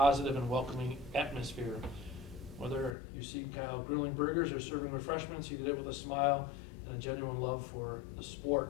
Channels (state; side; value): drops out; right; at 3.0 s